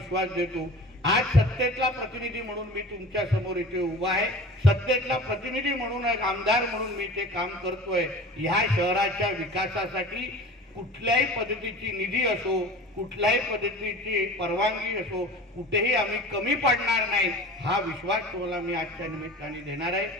देतो. आज सत्तेतला प्रतिनिधी म्हणून मी तुमच्या समोर इथे उभा आहे. सत्तेतला प्रतिनिधी म्हणून, एक आमदार म्हणून मी इथे काम करतोय. ह्या शहराच्या विकासासाठी कुठल्याही पद्धतीची निधी असो, कुठल्याही पद्धतीची परवानगी असो, कुठेही आम्ही कमी पडणार नाही, हा विश्वास तुम्हाला मी आजच्या निमित्ताने देणार आहे.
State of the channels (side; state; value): both; normal; correlation 0.38